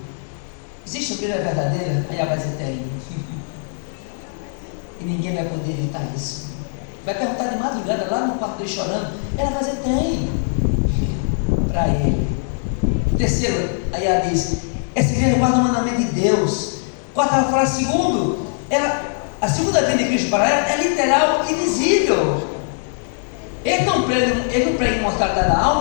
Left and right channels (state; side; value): silent; right; 61 dB below the other